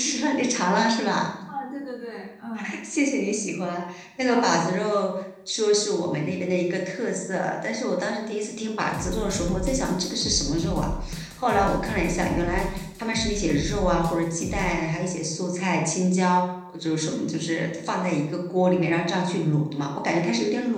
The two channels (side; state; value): both; identical; correlation 1.00